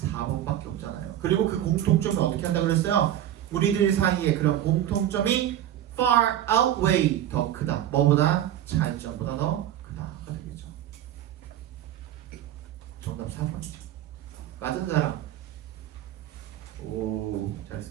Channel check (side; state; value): left; quieter; 11.7 dB